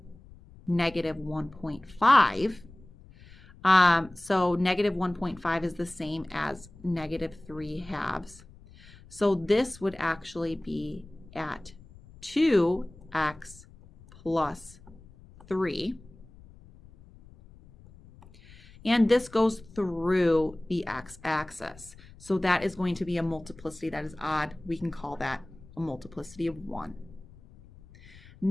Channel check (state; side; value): noise; left; rumble, 22 dB below the sound